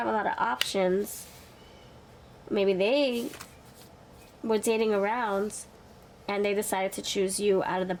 a lot of options. Maybe they were dating around and they decided to choose you out of the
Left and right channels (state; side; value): identical; both; correlation 1.00